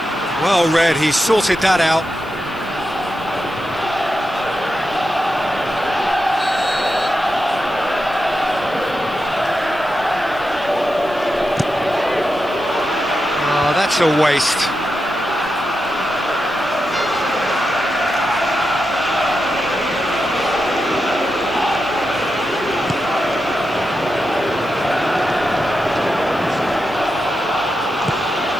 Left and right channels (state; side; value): noise; left; hiss, 26 dB below the sound